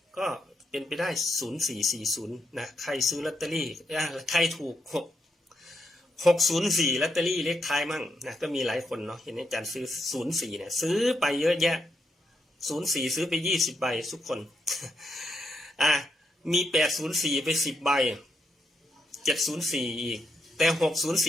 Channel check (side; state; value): both; normal; correlation 0.80